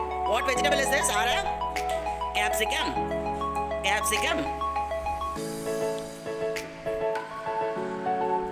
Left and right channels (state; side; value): identical; both; correlation 1.00